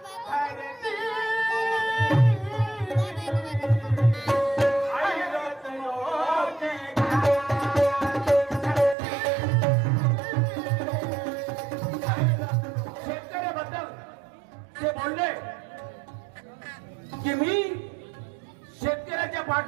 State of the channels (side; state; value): left; drops out; at 9.0 s